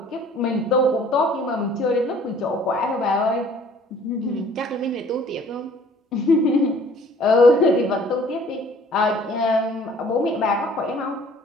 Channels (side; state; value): both; normal; correlation 0.54